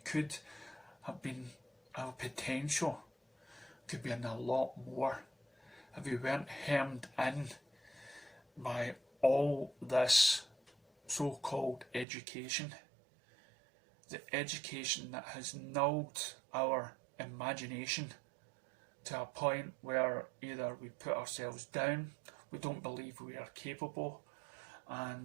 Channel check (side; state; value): left; drops out; at 12.1 s